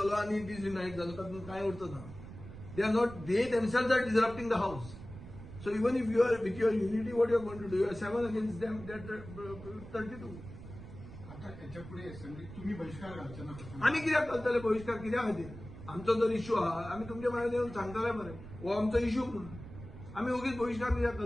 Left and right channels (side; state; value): right; noise; rumble, 14 dB below the sound